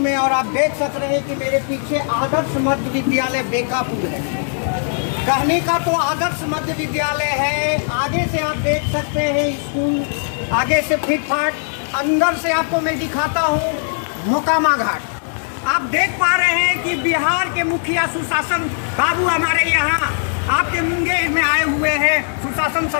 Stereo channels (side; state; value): right; silent; digital silence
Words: और आप देख सक रहे हैं कि मेरे पीछे आदर्श मध्य विद्यालय बेकापुर है। कहने का तो आदर्श मध्य विद्यालय है, आगे से आप देख सकते हैं स्कूल आगे से फिट फाट, अंदर से आपको मैं दिखाता हूँ मोकामा घाट। आप देख पा रहे हैं कि बिहार के मुखिया सुशासन बाबू हमारे यहाँ आपके मुंगेर में आए हुए हैं। सुशासन